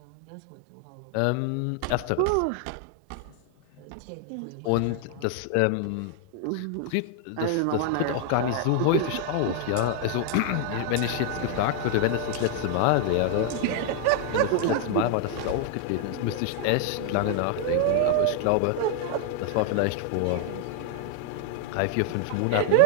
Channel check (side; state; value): both; different; correlation 0.00